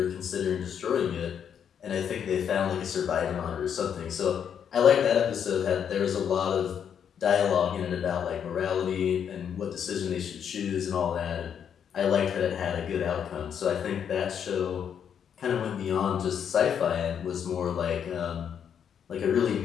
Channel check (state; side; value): quieter; right; 8.2 dB